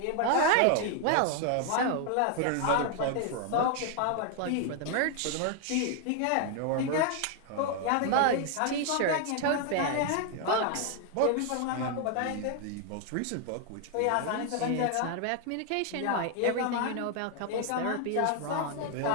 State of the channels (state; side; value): different; both; correlation 0.00